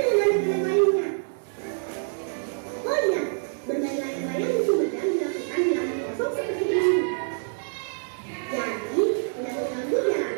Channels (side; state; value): left; silent; 61 dB below the other